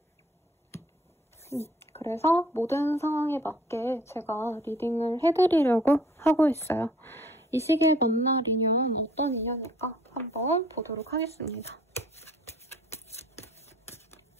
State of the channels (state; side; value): normal; both; correlation 0.55